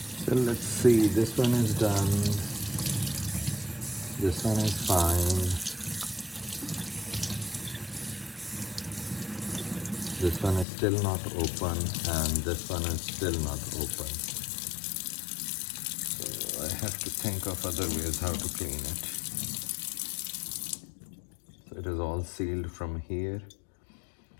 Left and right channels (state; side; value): drops out; right; at 10.7 s